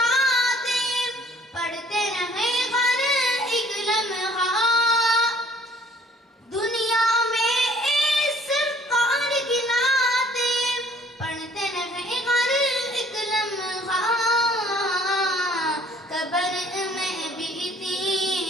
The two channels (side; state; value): both; normal; correlation 0.57